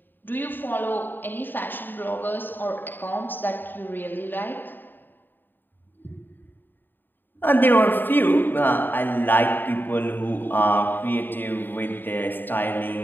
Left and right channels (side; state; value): right; late; 0.093 ms